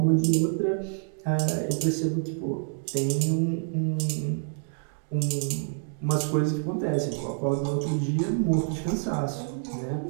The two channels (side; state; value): left; silent; digital silence